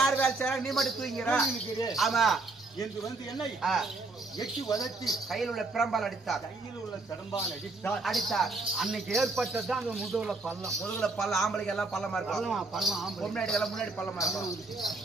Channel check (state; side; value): quieter; left; 3.4 dB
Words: வேலை செய்யறாங்க, நீ மட்டும் தூங்கிற. ஆமா என்று வந்து என்னை எட்டி வதத்தி கையில் உள்ள பிரம்பால் அடித்தார். கையில் உள்ள பிரம்பால் அடித்தார். அன்னைக்கு ஏற்பட்டதான் அந்த முதுகுல பள்ளம். ஆம்பளைக்கு எல்லாம் பள்ளமா இருக்கும். பள்ளம் முன்னாடி எல்லாம் முன்னாடி பள்ளமா இருக்கும்.